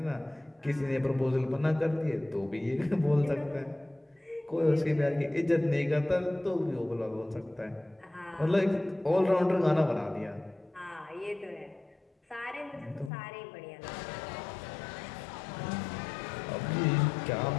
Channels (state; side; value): drops out; right; at 13.1 s